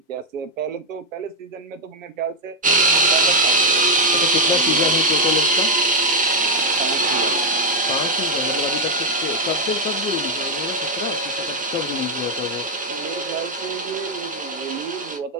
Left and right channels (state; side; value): normal; both; correlation 0.00